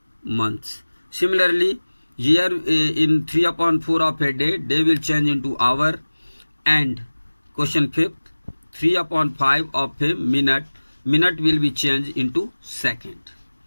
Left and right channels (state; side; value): inverted; both; correlation -1.00